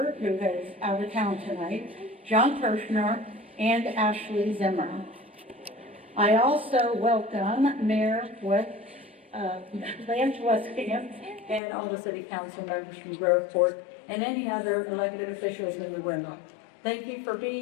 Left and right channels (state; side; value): drops out; right; at 11.6 s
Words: who is out of town tonight, John Kirshner, and Ashley Zimmer. I also welcome Mayor Lance Westcamp and all the City Council members from Grove Ford and any other elected officials in the room. Thank you for